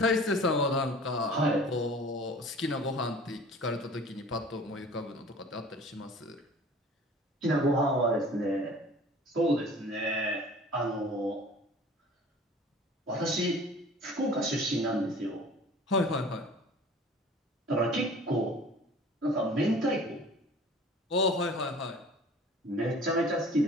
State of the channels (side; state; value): both; normal; correlation 0.46